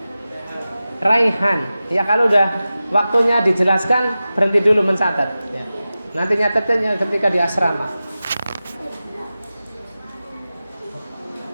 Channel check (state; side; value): inverted; both; correlation -0.95